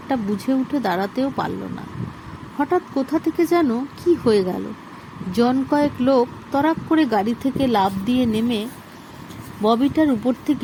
বুঝে উঠে দাঁড়াতেও পারল না। হঠাৎ কোথা থেকে যেন কি হয়ে গেল। জন কয়েক লোক তরাক করে গাড়ি থেকে লাফ দিয়ে নেমে ববিটার উপর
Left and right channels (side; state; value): both; identical; correlation 1.00